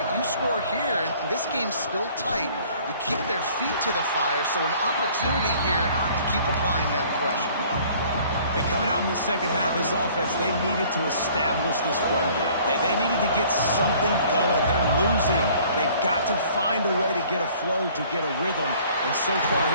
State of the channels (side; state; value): both; inverted; correlation -0.54